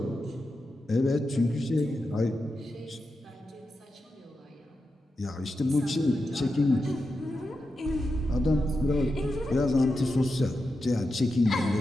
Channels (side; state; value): both; normal; correlation 0.89